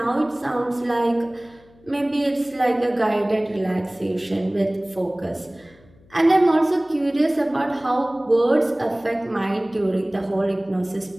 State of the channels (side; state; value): left; noise; hum, 28 dB below the sound